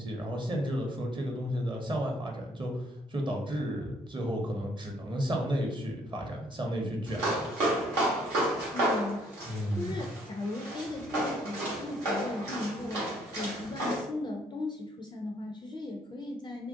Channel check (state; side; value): normal; both; correlation 0.67